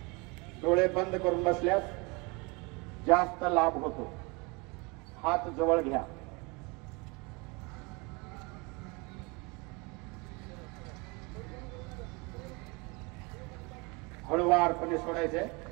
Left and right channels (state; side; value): quieter; left; 28.2 dB